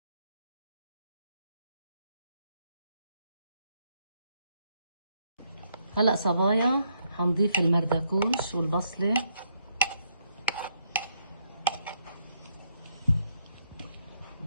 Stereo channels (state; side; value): inverted; both; correlation -0.74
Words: هلا صبايا حنضيف المردكوش والبصله